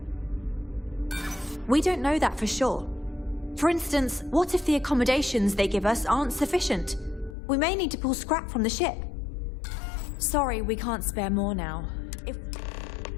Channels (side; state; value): right; drops out; at 7.4 s